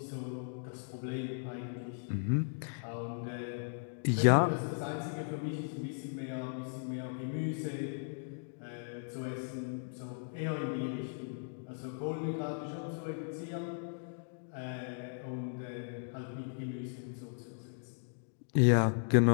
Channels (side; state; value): right; silent; digital silence